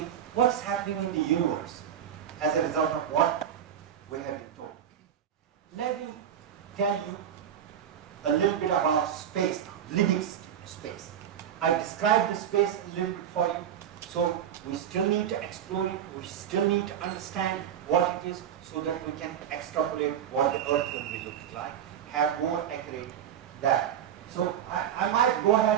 what's happening in the universe as a result of what we have been told. Let me tell you a little bit about space now, living space. I described the space a little bit for you. So we still need to explore it, we still need to understand what it is so that we can extrapolate what the Earth will be looking like, have more accurate data. So I might go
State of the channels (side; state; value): left; quieter; 9.4 dB